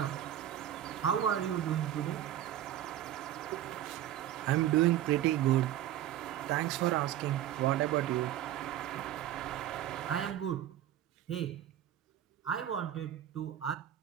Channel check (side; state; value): left; quieter; 12.1 dB